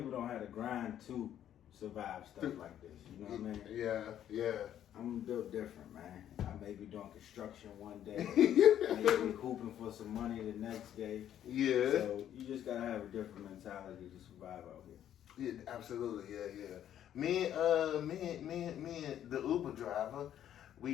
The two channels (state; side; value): quieter; right; 10.7 dB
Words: don't have the grind to survive stuff like this. You know what I mean? Yeah, yeah. I'm built different, man. I may be doing construction one day, maybe hooping for some money the next day. Yeah. So you just gotta have a different mentality to survive out here. Yeah, absolutely. Yeah, yeah. Me and the Uber driver,